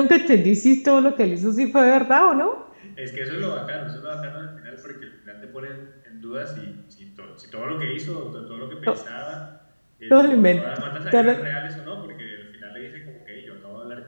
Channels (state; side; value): inverted; both; correlation -1.00